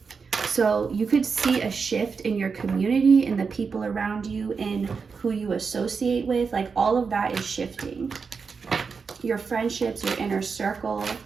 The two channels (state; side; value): quieter; left; 5.3 dB